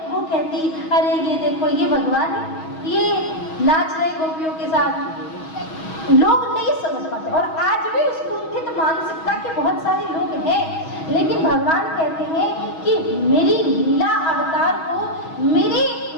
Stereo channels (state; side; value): late; right; 6.2 ms